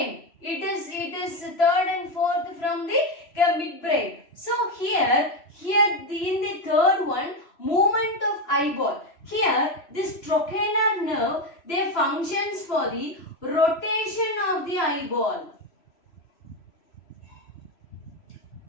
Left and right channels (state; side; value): late; right; 3.0 ms